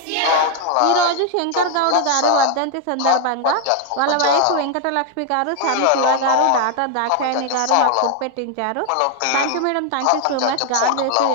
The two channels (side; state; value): both; different; correlation 0.01